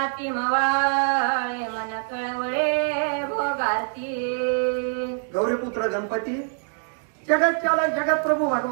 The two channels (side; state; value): left; silent; 56 dB below the other